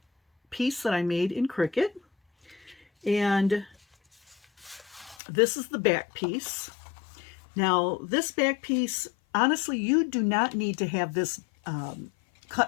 piece that I made in Cricut. And this is the back piece. Now, this back piece, honestly, you do not need to have this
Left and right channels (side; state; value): right; drops out; at 5.2 s